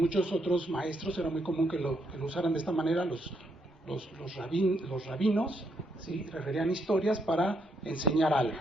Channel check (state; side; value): normal; both; correlation 0.76